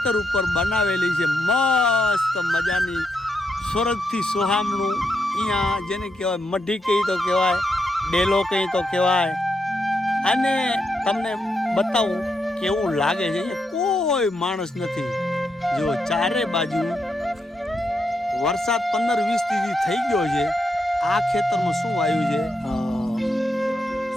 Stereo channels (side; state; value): both; normal; correlation 0.82